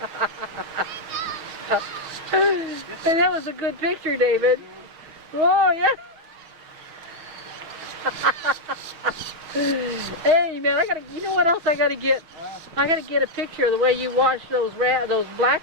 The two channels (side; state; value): left; late; 6.1 ms